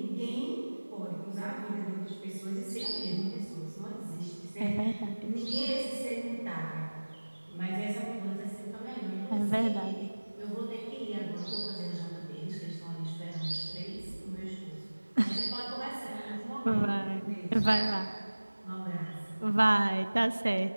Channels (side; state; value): both; inverted; correlation -1.00